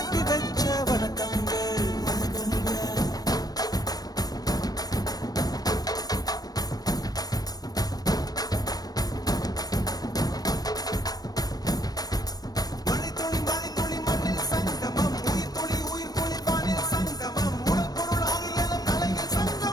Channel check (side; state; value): right; late; 0.19 ms